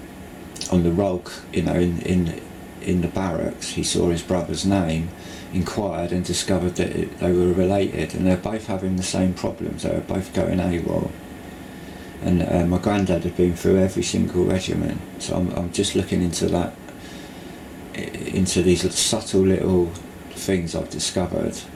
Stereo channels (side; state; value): both; identical; correlation 1.00